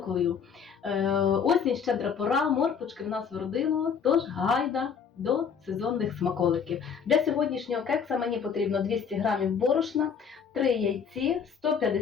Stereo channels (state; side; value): quieter; right; 6.7 dB